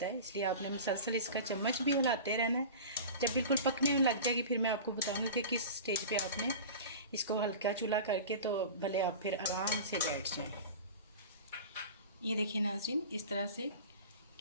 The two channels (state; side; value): inverted; both; correlation -0.34